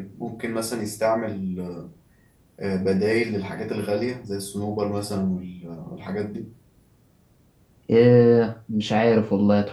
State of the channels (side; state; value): both; identical; correlation 1.00